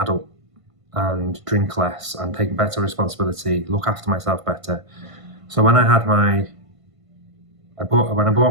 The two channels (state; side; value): late; left; 1.5 ms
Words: and drink less and take better responsibility, look after myself better. So when I bought